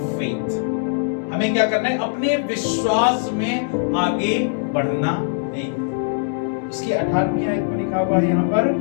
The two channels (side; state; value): right; silent; digital silence